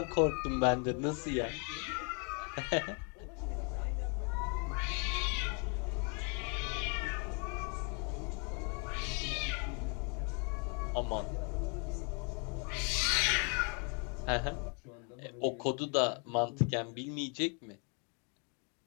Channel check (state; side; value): quieter; right; 36.7 dB